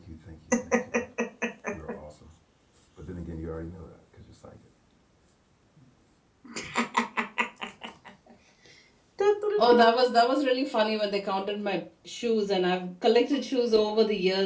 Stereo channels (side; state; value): both; identical; correlation 1.00